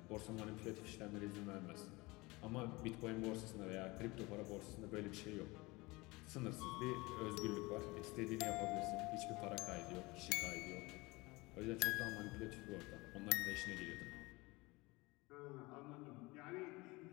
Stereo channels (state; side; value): quieter; right; 23.3 dB